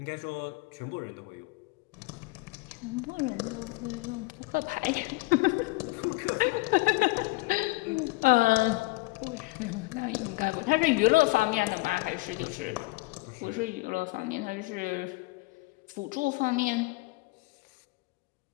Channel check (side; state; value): right; quieter; 22.6 dB